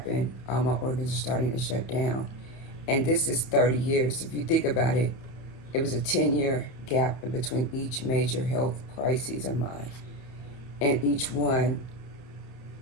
All my organs are starting to shut down. And this is 30 years. If you think about it, it was a 10-year gap in between each major health crisis of mine. And each one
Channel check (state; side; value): late; right; 30 ms